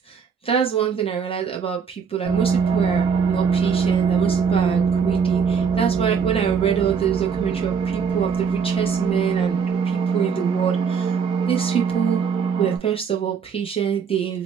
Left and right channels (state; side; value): quieter; left; 6.4 dB